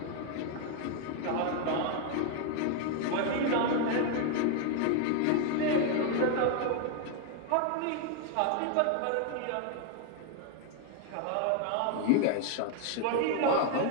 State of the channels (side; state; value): both; different; correlation 0.01